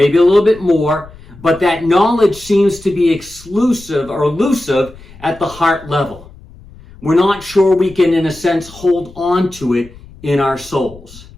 more, but that knowledge seems to be exclusive or elusive at the heart level. We're not sure we can, in a sense, hold on to it in our souls.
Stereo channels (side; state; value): left; noise; rumble, 21 dB below the sound